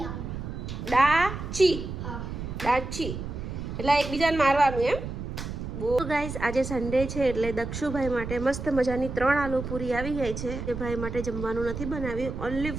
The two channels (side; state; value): right; noise; rumble, 7 dB below the sound